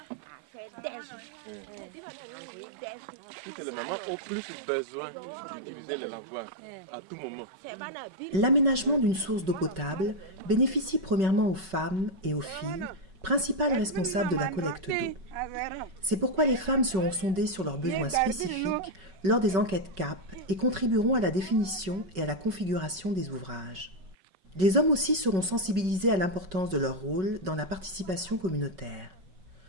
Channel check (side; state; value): left; late; 5.3 ms